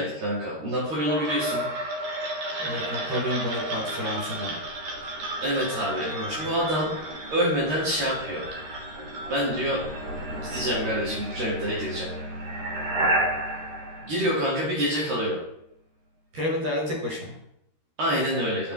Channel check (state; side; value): late; left; 13 ms